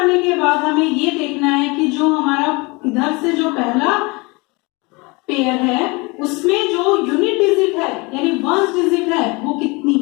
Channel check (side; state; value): right; quieter; 26.5 dB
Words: के बाद हमें ये देखना है कि जो हमारा इधर से जो पहला पेयर है उसमें जो यूनिट डिजिट है यानी वंस डिजिट है वो कितनी